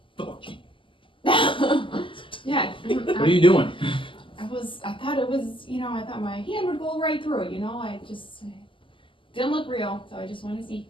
Fuck you. Yeah. What are you doing? I thought it was, I thought my hand would go right through it, I just didn't look real, so I just want to see.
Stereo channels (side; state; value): right; late; 0.25 ms